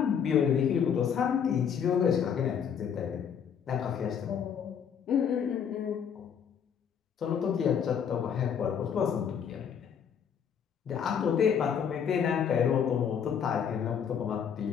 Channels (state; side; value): quieter; right; 7.7 dB